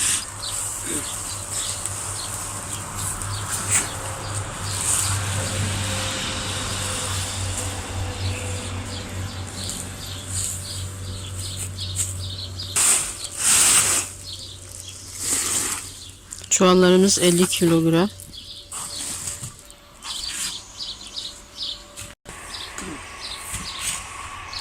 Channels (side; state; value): both; identical; correlation 1.00